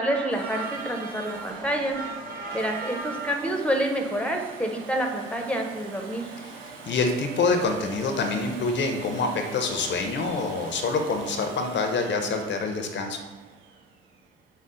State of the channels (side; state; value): both; normal; correlation 0.36